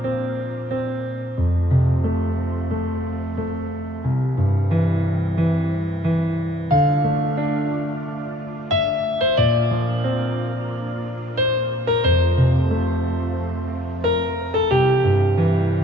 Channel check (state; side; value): normal; both; correlation 0.60